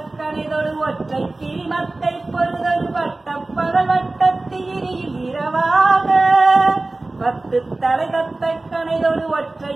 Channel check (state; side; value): quieter; left; 3.0 dB